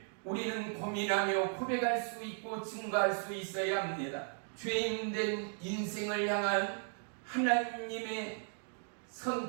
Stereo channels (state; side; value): silent; left; 54 dB below the other